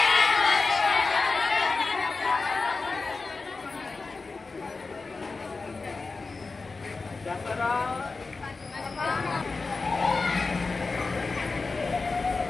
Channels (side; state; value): right; quieter; 4.0 dB